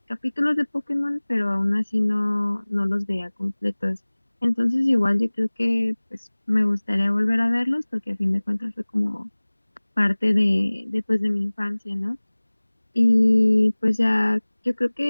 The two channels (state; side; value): inverted; both; correlation -1.00